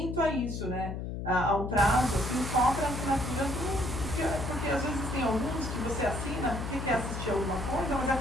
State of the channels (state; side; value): noise; left; hum, 5 dB below the sound